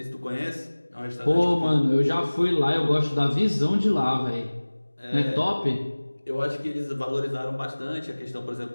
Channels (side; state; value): both; inverted; correlation -1.00